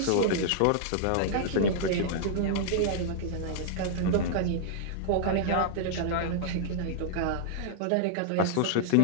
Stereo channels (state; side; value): different; both; correlation -0.01